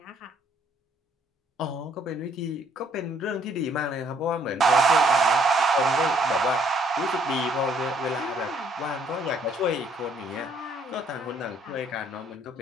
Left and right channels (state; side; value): normal; both; correlation 0.65